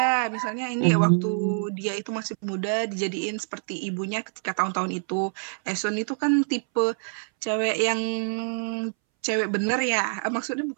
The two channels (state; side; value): silent; left; 61 dB below the other